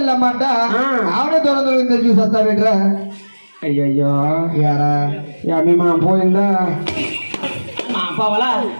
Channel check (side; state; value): both; inverted; correlation -1.00